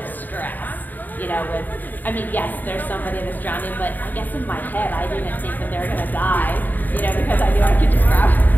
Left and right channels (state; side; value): late; right; 0.087 ms